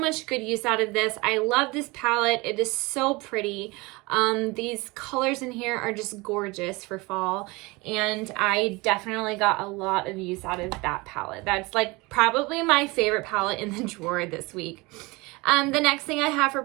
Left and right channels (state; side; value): quieter; left; 24.2 dB